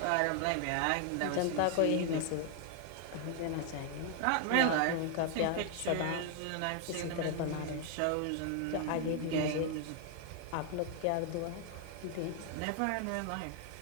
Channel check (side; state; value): both; different; correlation 0.00